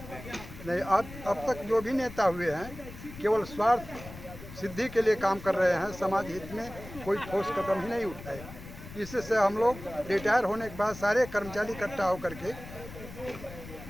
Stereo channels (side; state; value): left; noise; rumble, 15 dB below the sound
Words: हैं? नहीं, अब तक जो भी नेता हुए हैं केवल स्वार्थ सिद्धि के लिए काम कर रहे हैं, समाज हित में कोई ठोस कदम ही नहीं उठाए। इससे हम लोग रिटायर होने के बाद सारे कर्मचारी इकट्ठा होकर के